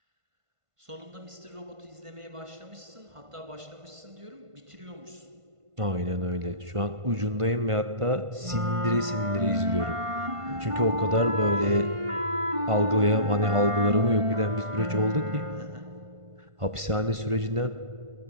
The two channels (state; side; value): late; left; 1.5 ms